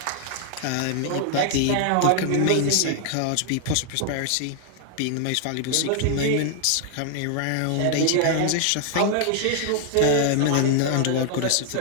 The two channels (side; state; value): both; different; correlation 0.00